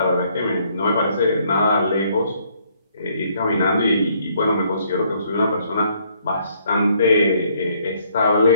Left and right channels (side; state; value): both; inverted; correlation -0.67